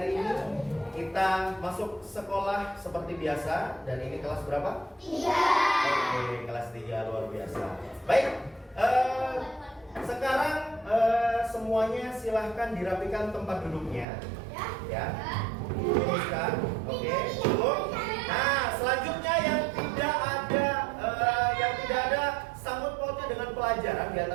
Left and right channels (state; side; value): drops out; left; at 14.1 s